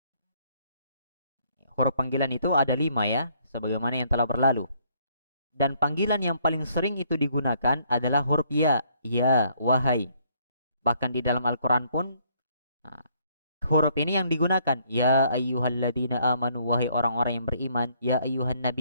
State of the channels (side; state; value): both; inverted; correlation -0.66